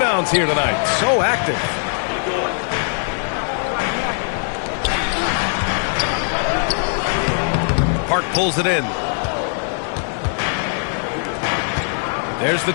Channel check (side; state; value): right; silent; digital silence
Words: here tonight. So active. Park pulls it in. There's the